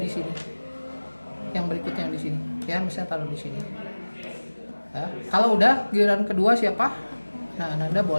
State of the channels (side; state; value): both; inverted; correlation -1.00